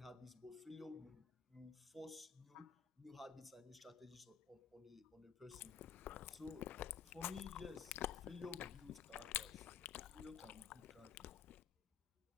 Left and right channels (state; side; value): quieter; right; 7.8 dB